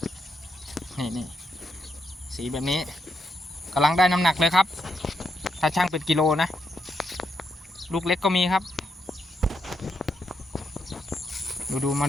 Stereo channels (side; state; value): both; normal; correlation 0.81